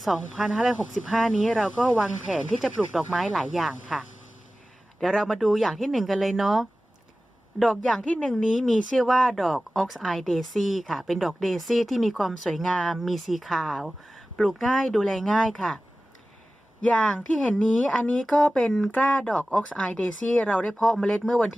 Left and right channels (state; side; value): normal; both; correlation 0.96